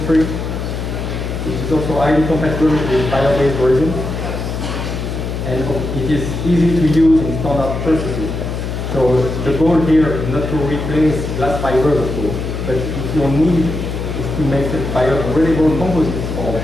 It is also highly compatible with bio-based resins, and it is easy to use in standard processes. So the goal here is not to replace glass fibers, of course, but if your need is to make biodegradable composites or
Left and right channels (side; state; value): left; noise; hum, 4 dB below the sound